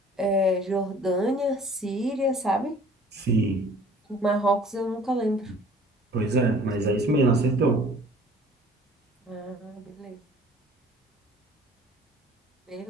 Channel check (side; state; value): both; normal; correlation 0.50